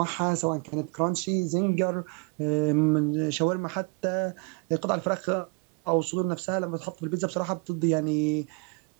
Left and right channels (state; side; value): quieter; left; 32.6 dB